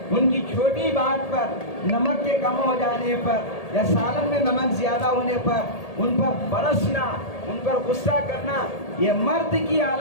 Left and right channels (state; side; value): late; right; 1.8 ms